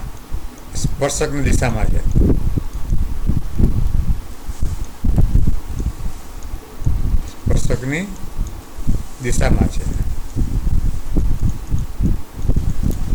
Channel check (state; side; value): identical; both; correlation 1.00